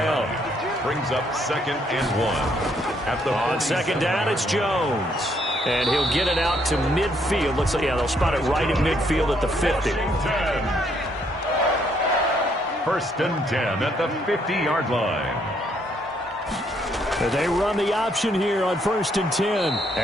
Brings up 2nd and 1. On 2nd down, it's Jones. And he'll get it out to midfield. Looks like, yeah, they'll spot it right at midfield at the 50. 1st and 10 at the 50-yard line. They run the option here on 1st and 10.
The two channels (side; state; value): both; normal; correlation 0.70